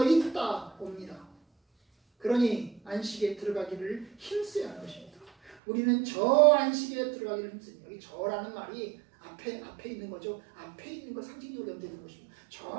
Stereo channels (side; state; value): left; drops out; at 5.6 s